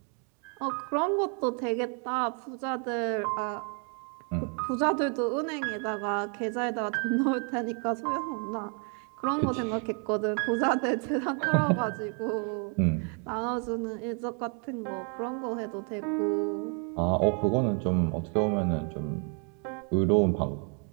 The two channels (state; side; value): quieter; left; 39.7 dB